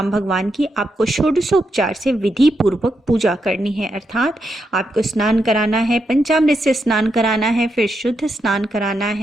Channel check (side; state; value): both; normal; correlation 0.83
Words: भगवान की आपको षोडशोपचार से विधि पूर्वक पूजा करनी है, अर्थात आपको स्नान कराना है, पंचामृत से स्नान कराना है, फिर शुद्ध स्नान कराना